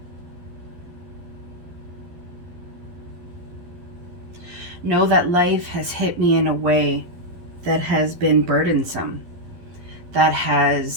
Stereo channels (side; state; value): left; late; 12 ms